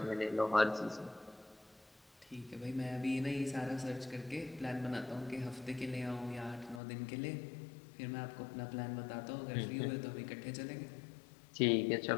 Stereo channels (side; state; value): right; drops out; at 6.8 s